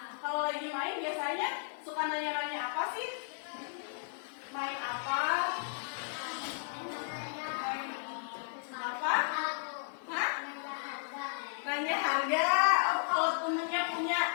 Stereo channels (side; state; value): right; silent; digital silence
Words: kalau lagi main biasanya suka nanya-nanya apa sih? Main apa? Main apa? Hah? Nanya harga. Oh, kalau temennya punya